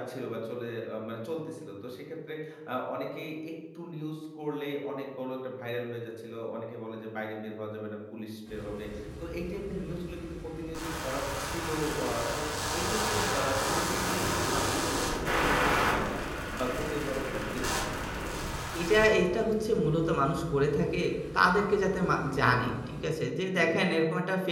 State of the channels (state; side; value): identical; both; correlation 1.00